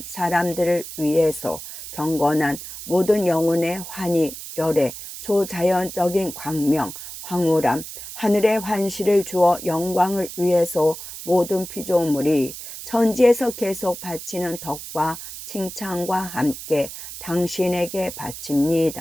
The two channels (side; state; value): right; noise; hiss, 11 dB below the sound